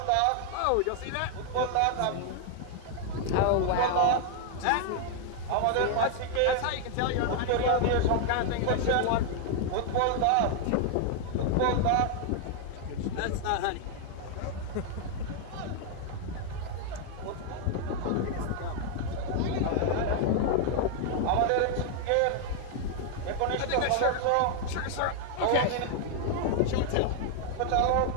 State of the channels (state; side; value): different; both; correlation 0.00